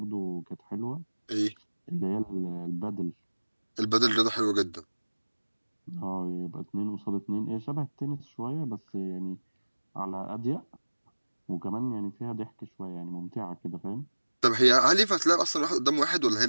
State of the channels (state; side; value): inverted; both; correlation -1.00